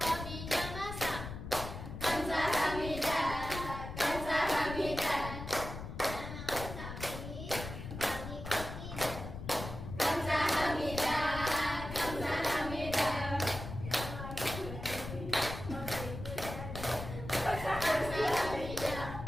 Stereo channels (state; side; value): noise; left; rumble, 8 dB below the sound